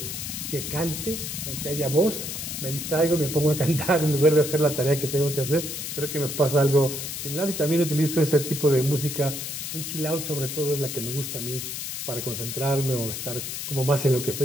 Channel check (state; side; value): noise; left; hiss, 5 dB below the sound